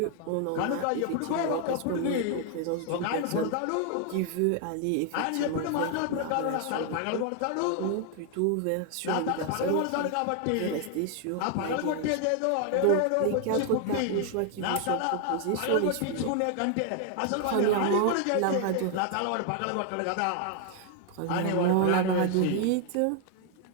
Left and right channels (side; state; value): both; different; correlation 0.00